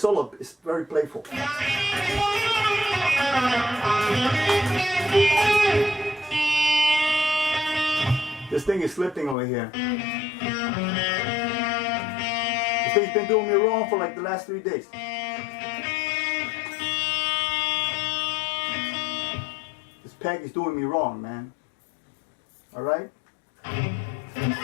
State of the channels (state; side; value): drops out; right; at 9.3 s